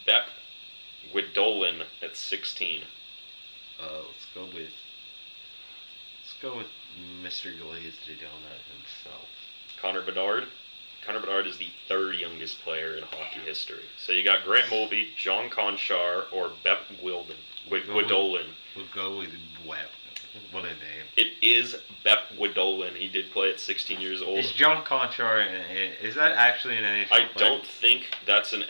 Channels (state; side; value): inverted; both; correlation -1.00